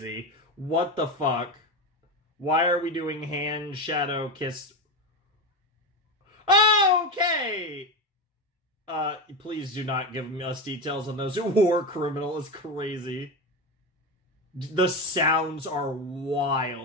What the fuck? Why are we doing hand shadow kiss? Oh, okay! Please do not give us details on those. War criminal is crazy. The sounds are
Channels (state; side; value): normal; both; correlation 0.17